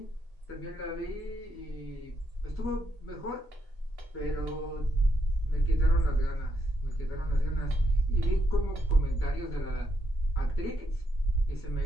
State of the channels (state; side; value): normal; both; correlation 0.78